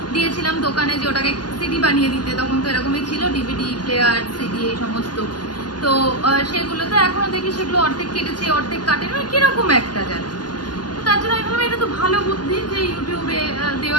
দিয়েছিলাম দোকানে যে ওটাকে সিডি বানিয়ে দিতে, তখন তো এরকমই ছিল, ডিভিডি প্লেয়ার, সিডি, এই সমস্ত। তো সেগুলো তো এখনো দেখি সেগুলো অর্ধেক কেটেছে, অর্ধেক কাটে, মানে কিরকম একটা যায়। তার জন্য আমি ভাবলাম এটা তো ভালো বুদ্ধি যে ইউটিউবে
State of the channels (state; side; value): late; right; 0.70 ms